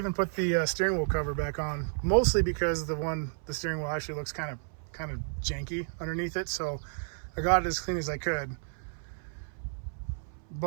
put the steering wheel cover back on, mostly because the steering wheel actually looks kind of janky underneath it. So I got it as clean as I could.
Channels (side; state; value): left; silent; 57 dB below the other